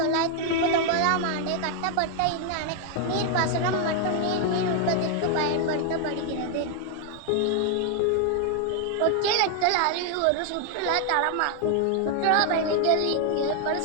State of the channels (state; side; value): different; both; correlation 0.00